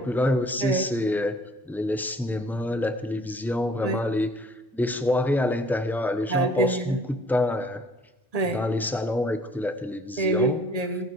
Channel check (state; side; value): normal; both; correlation 0.56